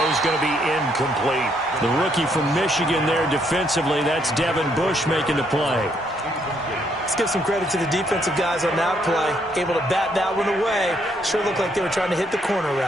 going to be incomplete. The rookie from Michigan there defensively. That's Devin Bush making the play. Let's give some credit to the defensive guys on that play. Able to bat that one away. Sure looked like they were trying to hit the corner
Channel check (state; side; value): normal; both; correlation 0.72